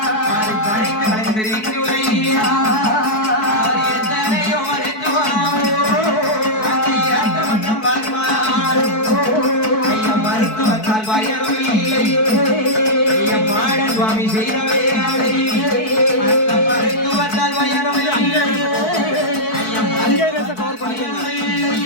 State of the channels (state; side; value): late; right; 4.6 ms